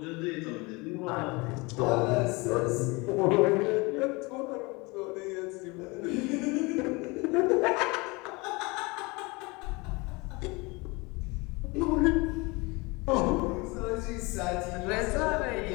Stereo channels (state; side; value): quieter; right; 25.8 dB